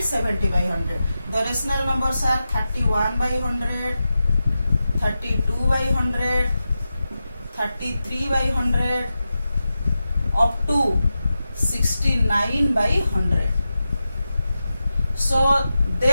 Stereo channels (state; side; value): inverted; both; correlation -0.91